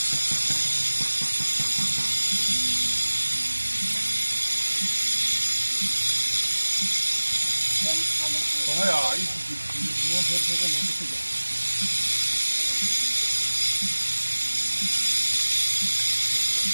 Không phải à? Ý thì mua thêm cái này cái gì?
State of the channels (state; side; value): inverted; both; correlation -1.00